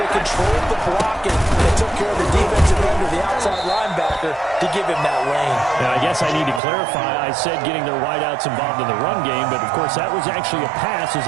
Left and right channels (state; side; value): drops out; left; at 6.6 s